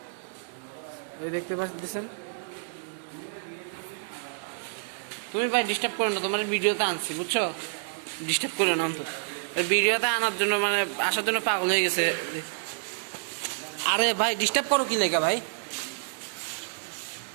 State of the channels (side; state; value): left; silent; digital silence